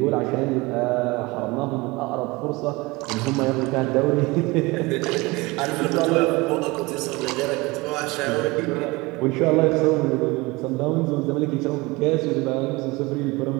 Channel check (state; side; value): quieter; left; 23.3 dB